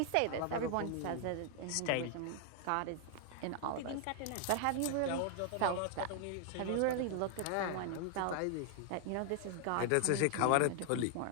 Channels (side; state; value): both; different; correlation 0.00